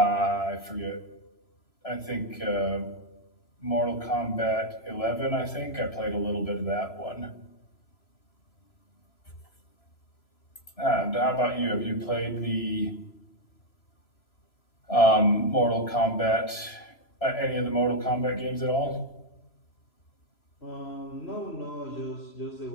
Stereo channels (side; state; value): right; late; 3.0 ms